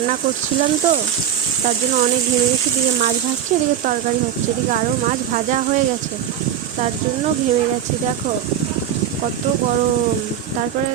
করছিলাম তো, তার জন্য অনেক ঘেমে গেছি। এদিকে মাছ ভাজছে, এদিকে তরকারি হচ্ছে, এদিকে আরও মাছ ভাজা হয়ে গেছে, তার জন্য ঘেমে গেছি। দেখো কত গরম। তারপরে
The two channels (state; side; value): quieter; left; 9.8 dB